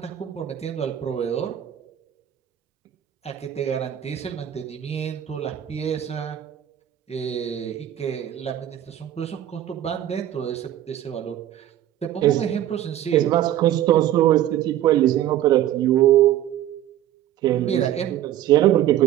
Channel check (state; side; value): quieter; left; 12.1 dB